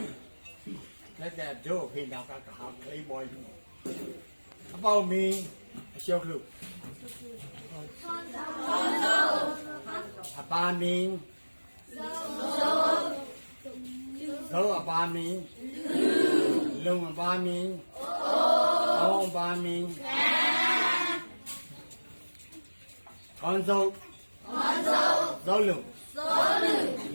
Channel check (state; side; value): inverted; both; correlation -1.00